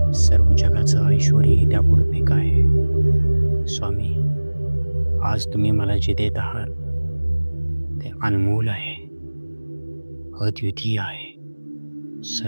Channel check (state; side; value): inverted; both; correlation -1.00